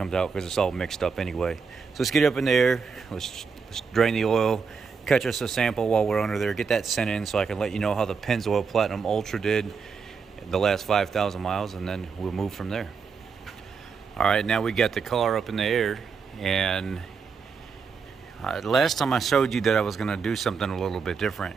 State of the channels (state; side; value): quieter; left; 5.6 dB